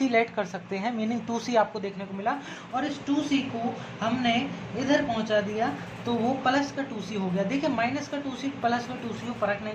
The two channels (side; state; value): both; identical; correlation 1.00